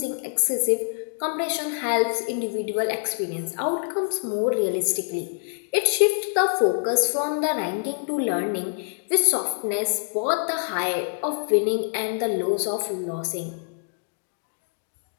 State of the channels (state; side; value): silent; right; digital silence